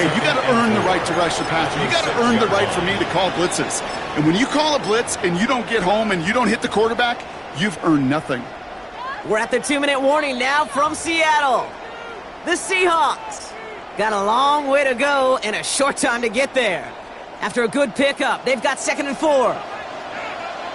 you got to earn the right to rush the passer. You got to earn the right for me to call blitzes. And when you call a blitz and you don't get home and you don't hit the quarterback, you've earned nothing. We're at the 2-minute warning now from Seattle. The Seahawks got a long way to go and a short time to get there. After a good pickup, they've got 2nd and 4.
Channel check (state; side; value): identical; both; correlation 1.00